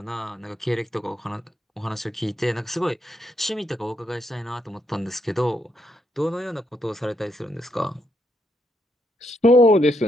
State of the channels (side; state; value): both; normal; correlation 0.77